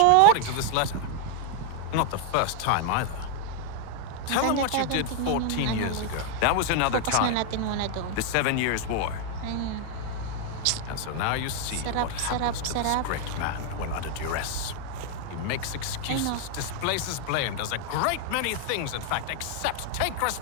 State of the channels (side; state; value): both; different; correlation 0.00